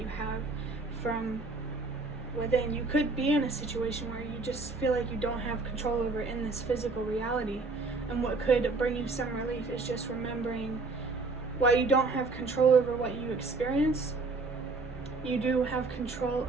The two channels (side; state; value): left; quieter; 3.7 dB